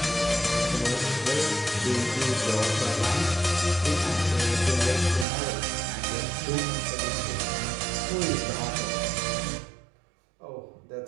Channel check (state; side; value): drops out; left; at 5.2 s